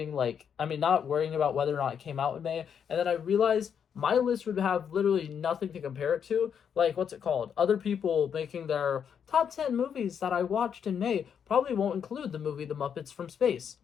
not worrying about whether or not it came out in May. And then I realized my list would have literally nothing to compare it to. Like, what's it called? Other people making their top 10 movies that I watched in May probably won't include the movie The Muppets from Space.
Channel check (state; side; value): quieter; right; 7.7 dB